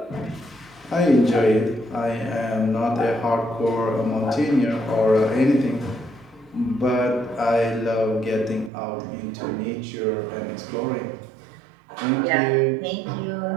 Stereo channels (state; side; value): drops out; left; at 8.7 s